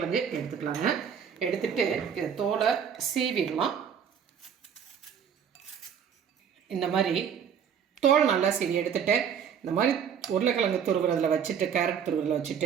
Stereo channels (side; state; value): left; quieter; 7.8 dB